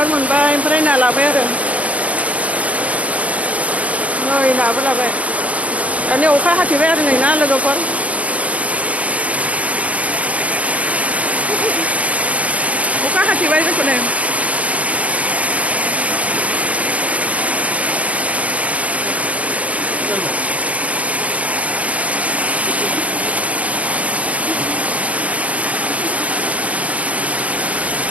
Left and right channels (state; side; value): late; left; 0.066 ms